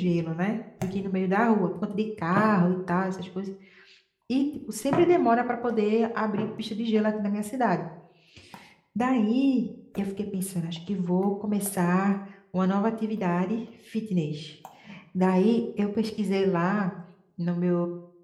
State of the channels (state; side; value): identical; both; correlation 1.00